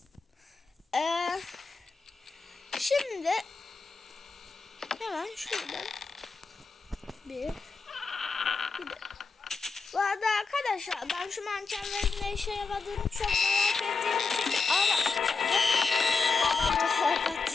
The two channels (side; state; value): right; quieter; 4.4 dB